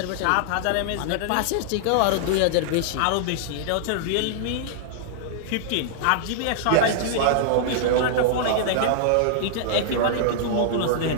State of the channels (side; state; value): both; different; correlation -0.01